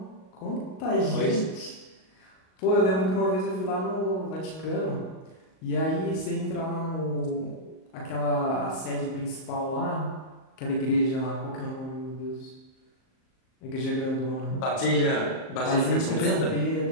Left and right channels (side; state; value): right; late; 38 ms